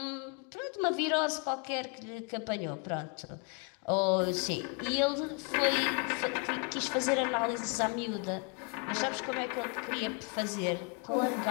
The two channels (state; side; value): quieter; right; 33.1 dB